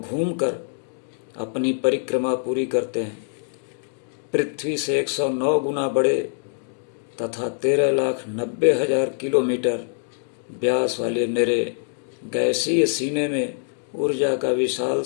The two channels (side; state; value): right; silent; digital silence